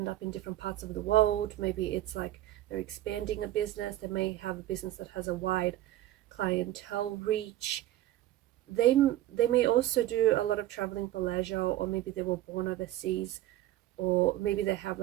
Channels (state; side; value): quieter; left; 14.4 dB